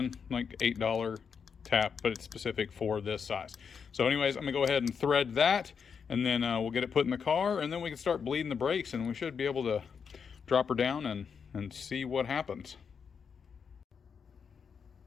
like $8 tap, but it's specific for this size. So anyways, I'm gonna go ahead and thread that, and then we'll get it put in the car, and then we can start bleeding the brakes, and we should be able to drop her down and see what happens.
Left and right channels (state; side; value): quieter; right; 6.4 dB